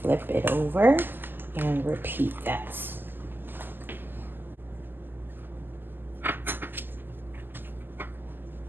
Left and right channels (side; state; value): left; late; 0.093 ms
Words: flip it over and repeat that.